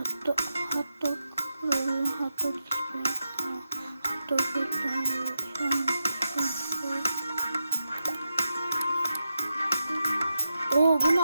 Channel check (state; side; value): inverted; both; correlation -0.89